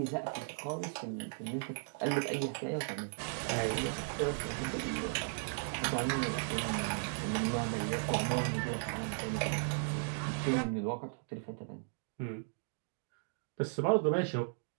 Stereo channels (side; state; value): left; silent; digital silence